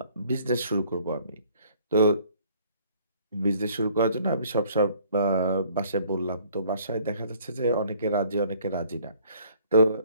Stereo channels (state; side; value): inverted; both; correlation -0.59